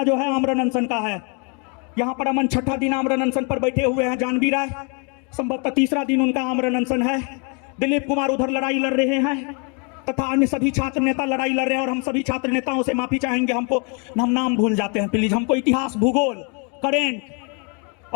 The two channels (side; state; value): right; quieter; 35.7 dB